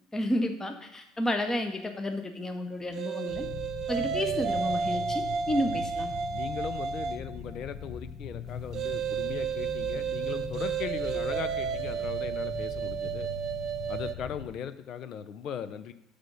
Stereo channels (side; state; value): both; normal; correlation 0.67